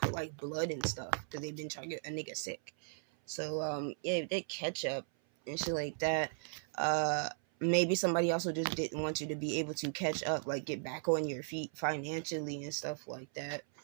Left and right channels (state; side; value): silent; left; 53 dB below the other